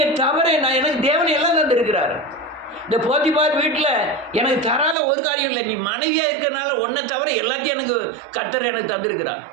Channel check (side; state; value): left; drops out; at 5.0 s